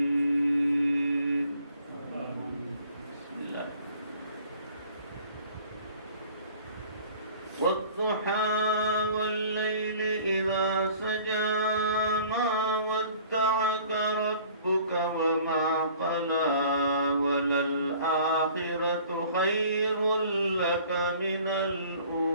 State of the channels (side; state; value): both; inverted; correlation -0.51